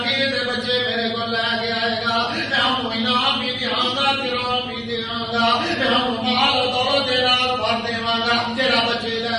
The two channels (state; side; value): noise; right; hum, 30 dB below the sound